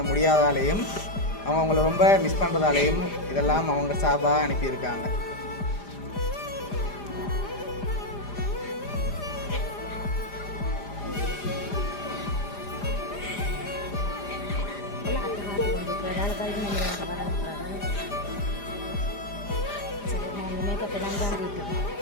முடியாதாலேயும் அவங்க அவங்கள ரொம்ப மிஸ் பண்ணுறதாலேயும் இதெல்லாம் அவங்க சார்பாக அனுப்பியிருக்காங்க.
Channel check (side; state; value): right; late; 5.0 ms